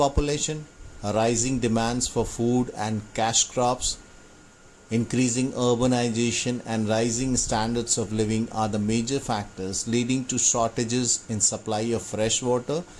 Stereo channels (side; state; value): both; identical; correlation 1.00